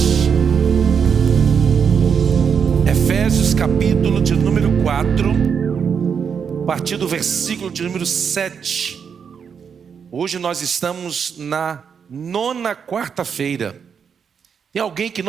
Efésios, capítulo de número 4, a partir do versículo de número 7. Hoje nós estamos na 9ª quarta-feira. Tem alguém que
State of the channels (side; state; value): left; quieter; 6.8 dB